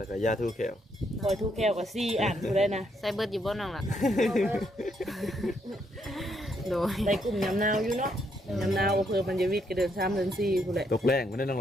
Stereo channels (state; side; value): normal; both; correlation 0.75